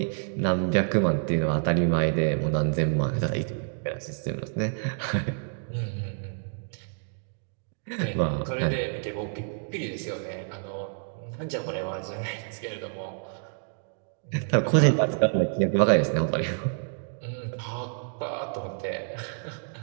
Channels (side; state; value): left; silent; 59 dB below the other